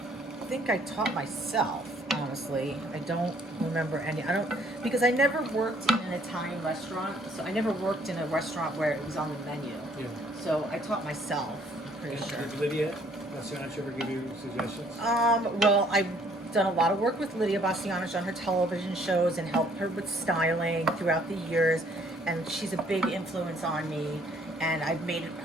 think I taught myself, honestly. I don't remember because I never worked in an Italian restaurant, so I never worked in a restaurant where it was on the menu. Yeah. So I taught myself, I'm pretty sure. Did Lydia Bastianich ever give you suggestions? Well, I've done a lot of work with Lydia Bastianich on her television shows and helped her with styling throughout the years, and she's a big influence on me. And I've made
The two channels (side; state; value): both; normal; correlation 0.62